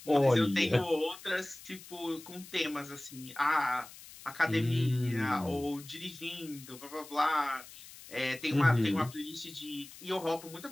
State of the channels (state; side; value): noise; left; hiss, 17 dB below the sound